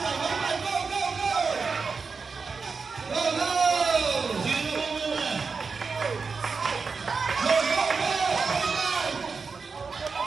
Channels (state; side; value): quieter; left; 4.9 dB